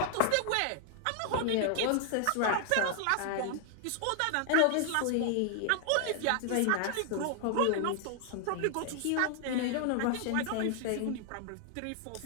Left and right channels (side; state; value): both; different; correlation 0.00